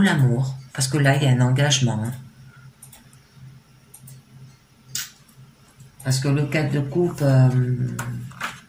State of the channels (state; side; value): identical; both; correlation 1.00